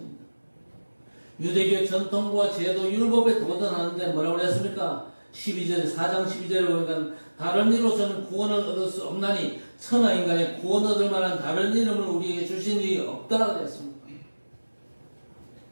유대교의 전통과 제도 율법에 도전하는데 뭐라고 했습니까? 4장 12절에 보니까 다른 이로서는 구원을 얻을 수 없나니 천하 인간의 구원 얻을 만한 다른 이름을 우리에게 주신 일이 없다 그랬습니다.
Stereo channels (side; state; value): both; inverted; correlation -1.00